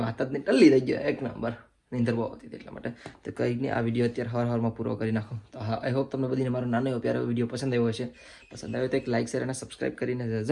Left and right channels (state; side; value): identical; both; correlation 1.00